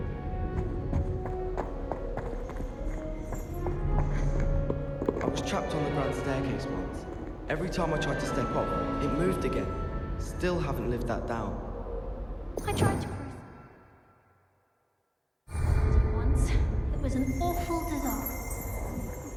I was trapped on the grand staircase once. Every time I tried to step off, it moved again. Still haven't lived that down. I tried to once. It was an awful disaster. I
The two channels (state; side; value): identical; both; correlation 1.00